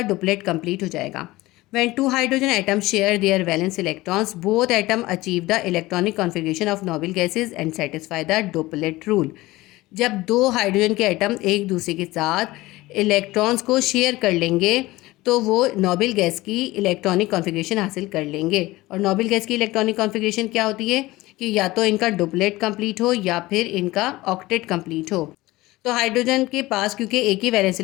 डुप्लेट कंप्लीट हो जाएगा। When two hydrogen atoms share their valence electrons, both atoms achieve the electronic configuration of noble gases and satisfy the duplet rule. जब दो हाइड्रोजन के एटम एक दूसरे के साथ इलेक्ट्रॉन्स को शेयर कर लेंगे तो वो नोबल गैस की इलेक्ट्रॉनिक कॉन्फ़िगरेशन हासिल कर लेंगे। और नोबल गैस की इलेक्ट्रॉनिक कॉन्फ़िगरेशन क्या होती है कि या तो इनका डुप्लेट कंप्लीट हो या फिर इनका ऑक्टेट कंप्लीट हो। तो हाइड्रोजन के पास क्योंकि एक ही वैलेंस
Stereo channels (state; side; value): quieter; right; 19.1 dB